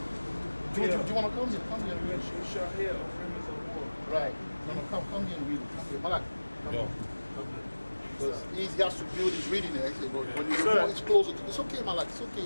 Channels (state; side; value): inverted; both; correlation -1.00